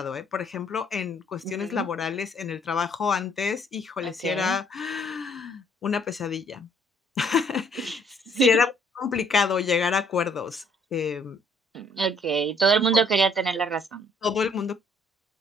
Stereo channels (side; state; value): both; normal; correlation 0.63